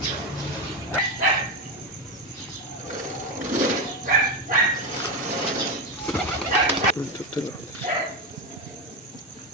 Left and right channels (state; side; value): normal; both; correlation 0.12